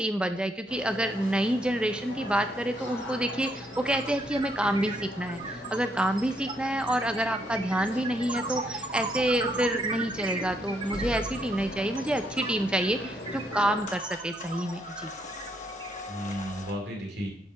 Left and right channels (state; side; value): normal; both; correlation 0.73